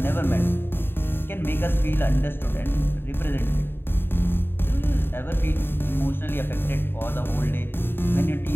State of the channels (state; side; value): late; right; 0.10 ms